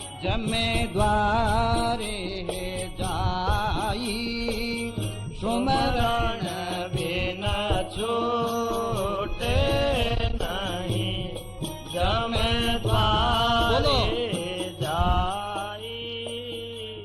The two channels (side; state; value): both; identical; correlation 1.00